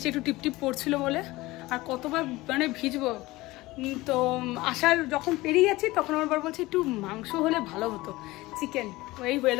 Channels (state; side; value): quieter; right; 19.7 dB